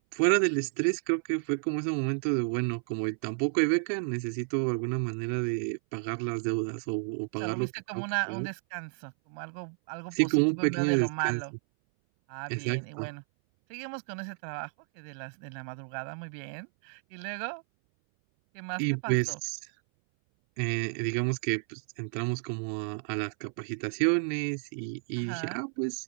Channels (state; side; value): silent; left; 57 dB below the other